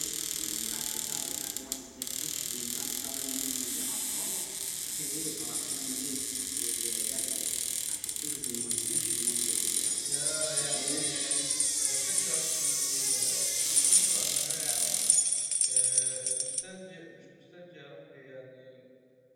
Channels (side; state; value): both; identical; correlation 1.00